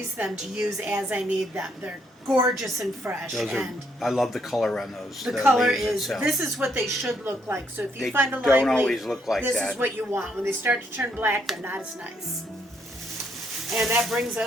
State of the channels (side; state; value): both; normal; correlation 0.72